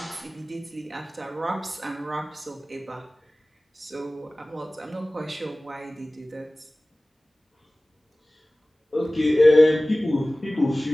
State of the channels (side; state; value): both; normal; correlation 0.98